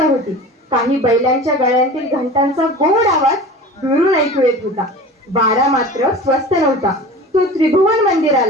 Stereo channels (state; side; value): normal; both; correlation 0.37